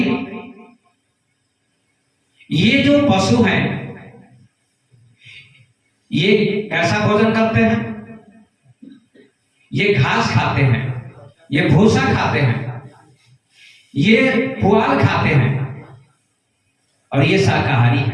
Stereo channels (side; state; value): both; identical; correlation 1.00